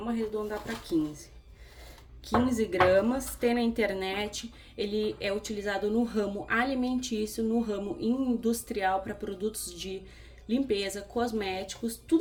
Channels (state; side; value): identical; both; correlation 1.00